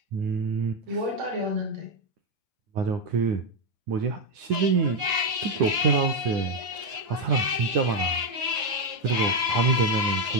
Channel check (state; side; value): late; left; 9.7 ms